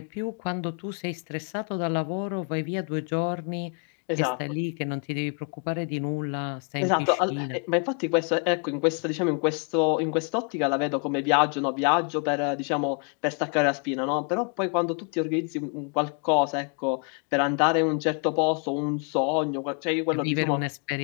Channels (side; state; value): right; quieter; 39.6 dB